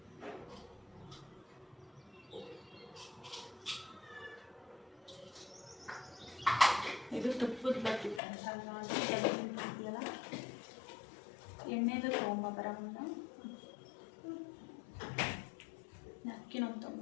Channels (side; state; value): right; drops out; at 8.2 s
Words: ಇದು ತುಪ್ಪದ ಬತ್ತಿ. ಅಂತೀಯಲ್ಲ, ಎಣ್ಣೆದು ತೊಗೊಂಬರ ಮುಂದೆ ಅಕ್ಕಿನೊಂದು